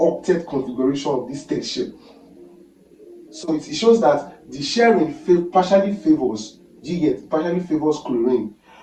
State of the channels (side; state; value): both; identical; correlation 1.00